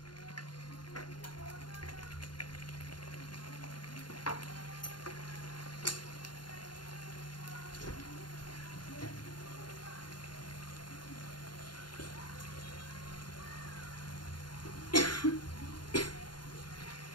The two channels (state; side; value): late; right; 0.71 ms